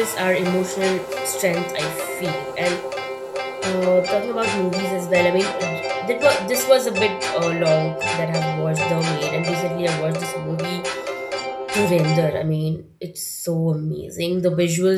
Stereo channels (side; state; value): both; identical; correlation 1.00